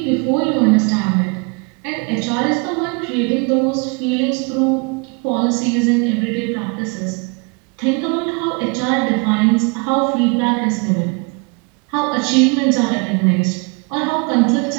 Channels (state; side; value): quieter; left; 32.3 dB